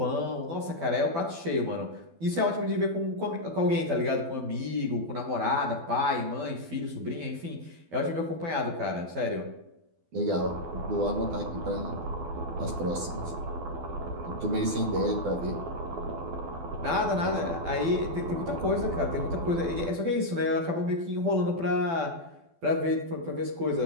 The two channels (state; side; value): late; left; 12 ms